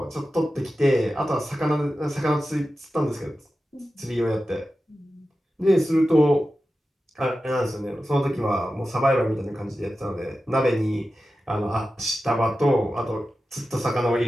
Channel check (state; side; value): normal; both; correlation 0.93